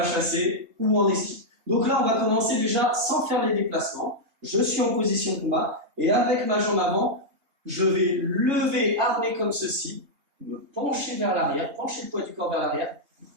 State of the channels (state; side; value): late; left; 3.2 ms